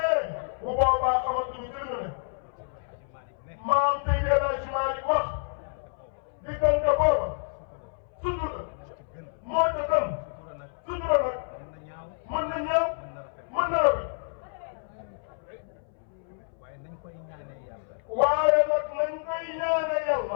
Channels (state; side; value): silent; right; 59 dB below the other